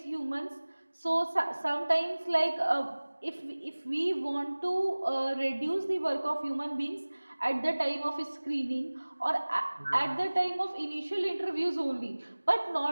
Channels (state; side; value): inverted; both; correlation -1.00